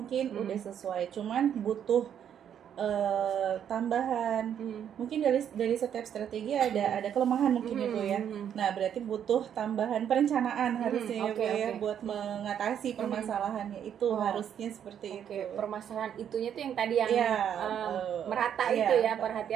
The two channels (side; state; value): left; quieter; 9.1 dB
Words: udah sesuai, cuman butuh tambahan. Mungkin dari setiap strategi ada kelemahan mungkin ya Bu ya. Nah, berarti butuh tambahan perencanaan harusnya ya Bu ya, buat mengatasi permasalahannya itu. Harusnya seperti itu. Permasalahan itunya tuh yang tadi yang merata itu ya,